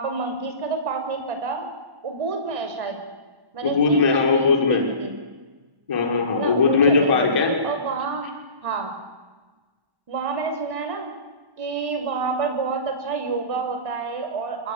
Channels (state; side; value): late; left; 1.1 ms